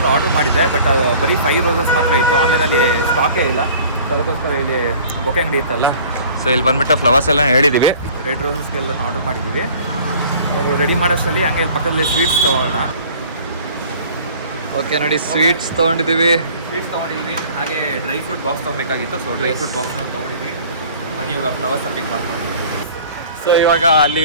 ಆರ್ಡರ್ ಮಾಡಿದ್ದೆ, ಬಟ್ ಅದು ಬರೀ 5 ರೋಸಸ್ ಮಾತ್ರ ಇತ್ತು. ಆನ್ಲೈನಲ್ಲಿ ಸ್ಟಾಕೇ ಇಲ್ಲ. ಅದಕ್ಕೋಸ್ಕರ ಇಲ್ಲಿ ಬೊಕ್ಕೆ ಅಂಗಡಿ ಇತ್ತಲ್ಲ, ಸೊ ಇಲ್ಲಿ ಬಂದುಬಿಟ್ಟು ಫ್ಲವರ್ಸ್ ಎಲ್ಲ ಹೇಳಿದ್ದೀವಿ. ರೆಡ್ ರೋಸಸ್ಗೆಲ್ಲ ಆರ್ಡರ್ ಮಾಡಿದ್ದೀವಿ. ಅವರು ರೆಡಿ ಮಾಡೋಷ್ಟರಲ್ಲಿ ಹಂಗೆ ಇಲ್ಲಿ ಪಕ್ಕದಲ್ಲಿ ಸ್ವೀಟ್ಸ್ ತೊಗೊಳ್ಳೋಣ. ಓಕೆ ನೋಡಿ, ಸ್ವೀಟ್ಸ್ ತೊಗೊಂಡಿದ್ದೀವಿ. ಹಾಗೆ ಡ್ರೈ ಫ್ರೂಟ್ ಬಾಕ್ಸ್ ತೊಗೊಬೇಕಾಗಿತ್ತು, ಸೊ ಡ್ರೈ ಫ್ರೂಟ್ ಬಾಕ್ಸ್ನ ತೊಗೊಂಡಿದ್ದೀವಿ. ಬನ್ನಿ ಇವಾಗ ಫ್ಲವರ್ಸ್ನ ಪಿಕ್ ಮಾಡ್ಕೊಂಡು. ಸೊ ಇವಾಗ ಅಲ್ಲಿ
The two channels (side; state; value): both; inverted; correlation -0.48